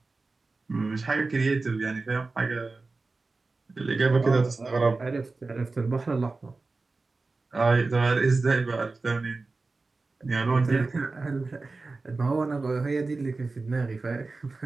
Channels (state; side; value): quieter; left; 3.7 dB